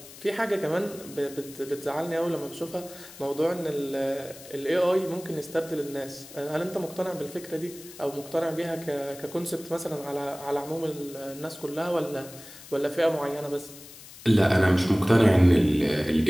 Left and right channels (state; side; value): noise; left; hiss, 18 dB below the sound